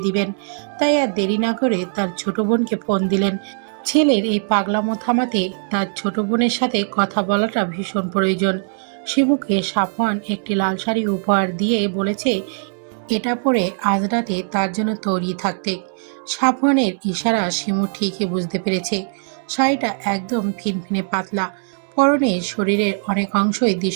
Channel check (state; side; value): silent; left; 65 dB below the other